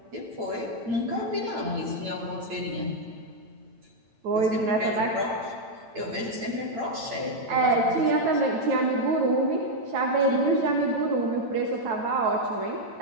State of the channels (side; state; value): left; late; 8.9 ms